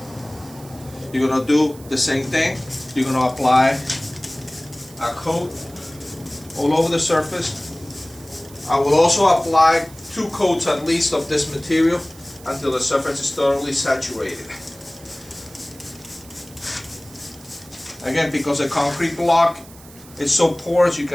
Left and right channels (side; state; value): right; noise; hiss, 21 dB below the sound